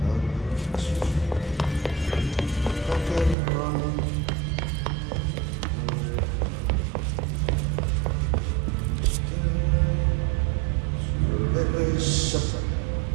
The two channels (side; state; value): left; drops out; at 3.4 s